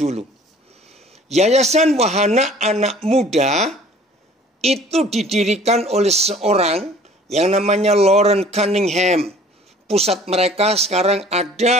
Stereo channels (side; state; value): both; normal; correlation 0.51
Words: Yayasan Wahana Anak Muda itu didirikan oleh seorang yang namanya Loren Cunningham. Pusat mereka sekarang